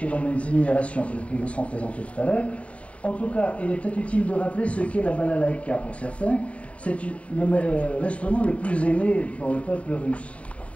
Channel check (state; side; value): late; right; 0.064 ms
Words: et dans mes énumérations, qui vous seront présentées tout à l'heure. En tout cas, il est peut-être utile de rappeler ce qu'est la balalaïka pour certains. C'est l'instrument le plus aimé pour le peuple russe.